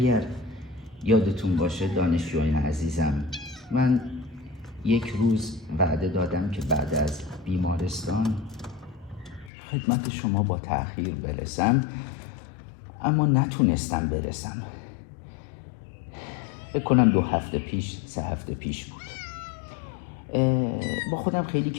یادتون باشه دانشجویان عزیزم، من یک روز وعده دادم که بعد از بیمارستان خدمت شما با تأخیر برسم، اما نتونستم برسم. فکر کنم 2 هفته پیش 3 هفته پیش بود. با خودم خیلی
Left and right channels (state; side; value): drops out; right; at 9.5 s